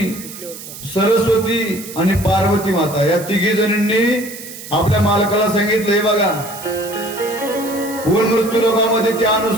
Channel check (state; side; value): noise; right; hiss, 13 dB below the sound